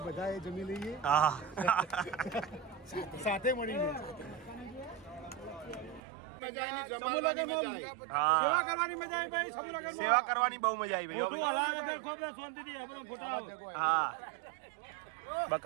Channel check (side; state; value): left; drops out; at 6.0 s